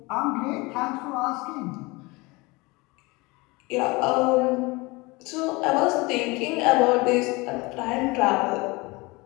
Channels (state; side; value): quieter; right; 24.4 dB